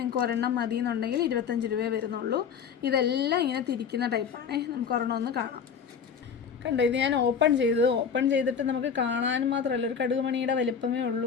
ഒരെണ്ണം മതി എന്നുണ്ടെങ്കിൽ 25 രൂപയെ വരുന്നുള്ളൂ. ഇതെല്ലാം ഇങ്ങനെ തിരിക്കുന്ന ടൈപ്പാണ്. നമുക്ക് ഒരെണ്ണം ഒന്ന് കാണാം. കണ്ടോ, ഇത് ഞാൻ ഓപ്പൺ ചെയ്തിട്ട് നമുക്ക് കാണാനും മാത്രമല്ല, ഒരു കടുകുമണിയുടെ വലിപ്പമേ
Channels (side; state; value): right; quieter; 6.9 dB